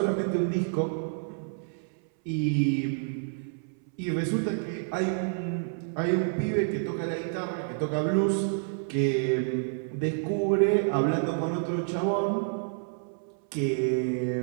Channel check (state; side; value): silent; left; 59 dB below the other